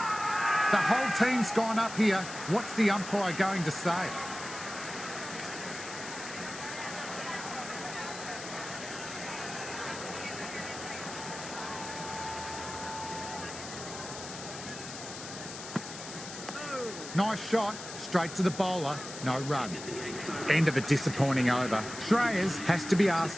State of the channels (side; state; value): left; noise; hiss, 11 dB below the sound